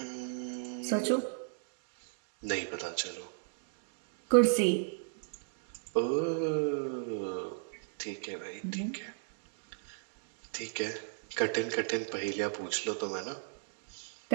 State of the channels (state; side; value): silent; left; digital silence